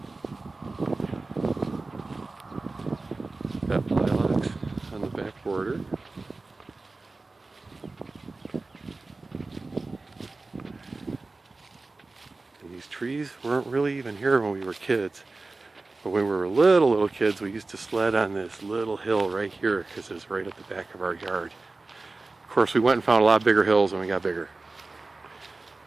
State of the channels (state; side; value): quieter; left; 3.5 dB